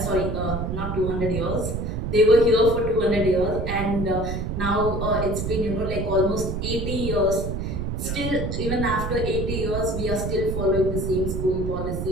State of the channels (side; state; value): right; noise; rumble, 3 dB below the sound